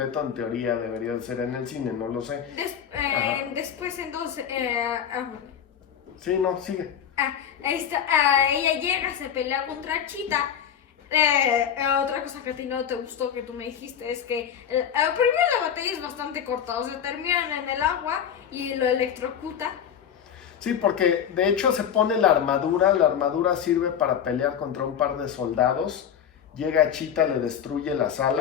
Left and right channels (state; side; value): quieter; right; 8.6 dB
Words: en teoría debería de ser en el cine, no lo sé. Después entonces... Sí, no, sigue. Ella llega, se pelea contra Cheetah. Otra cosa que a ti no te gustó, que tú me dijiste, es que primero la batalla es bastante corta, o sea, terminan en el agua y lo electrocuta. Sí, porque de hecho se pone la armadura sirve para pelear contra un par de soldados, llega Cheetah, le destruye las